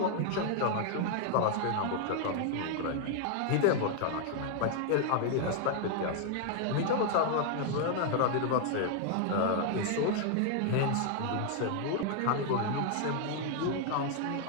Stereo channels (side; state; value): both; different; correlation 0.00